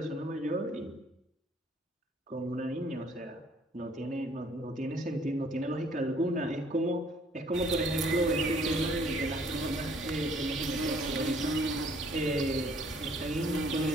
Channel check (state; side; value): normal; both; correlation 0.60